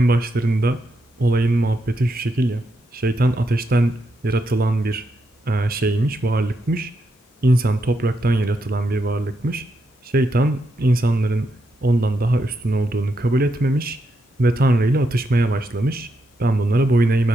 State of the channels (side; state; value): both; normal; correlation 0.82